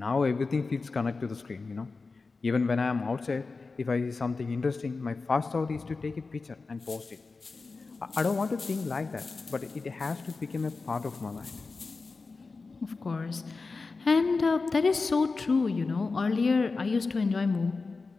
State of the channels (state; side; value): quieter; right; 4.1 dB